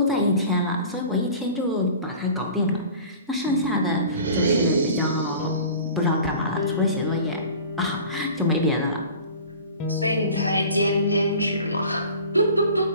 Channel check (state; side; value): inverted; both; correlation -0.41